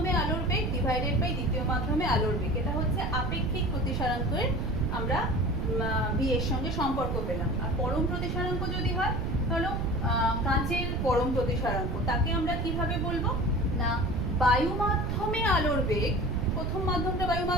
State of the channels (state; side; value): noise; right; rumble, 1 dB below the sound